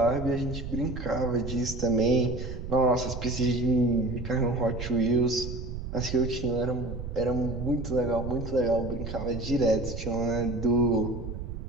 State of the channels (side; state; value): right; noise; rumble, 7 dB below the sound